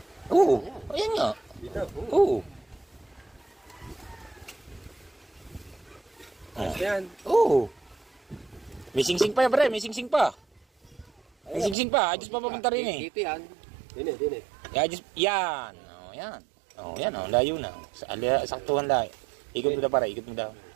Oo, ayan nga. Dito. Oo. Yan. Oo. May sing-sing pa yan, pre. May sing-sing pa. May sing-sing pa. Adjust pa papunta rin eh. Dito yan. Dini. Adjust. Yan. Oh, yan. Oh, yan. Oh, layo na. Saktuhan layo. Ikot mo daw, pare. Ikot mo daw.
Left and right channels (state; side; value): drops out; left; at 11.8 s